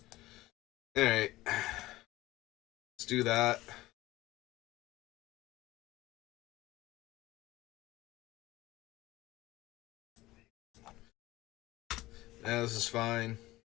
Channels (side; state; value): right; quieter; 17.8 dB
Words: Alright. Let's do that. Yeah, this is fine.